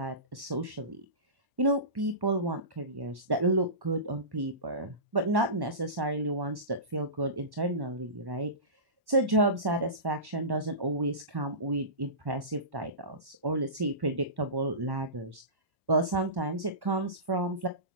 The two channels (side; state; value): left; late; 1.1 ms